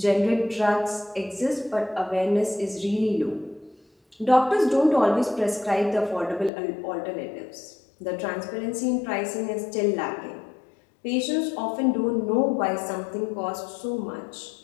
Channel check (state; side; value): drops out; right; at 6.5 s